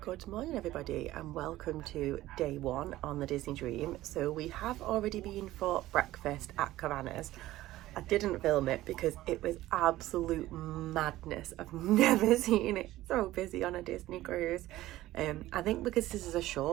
Good morning everybody and welcome to day one on the Disney Dream. So we have already been for breakfast at Cabanas. I didn't film it because it was absolute madness. I've never seen it so busy on a Disney cruise. I think because this is a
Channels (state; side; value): quieter; left; 15.9 dB